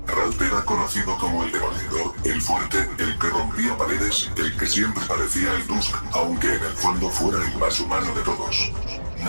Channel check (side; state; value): both; inverted; correlation -1.00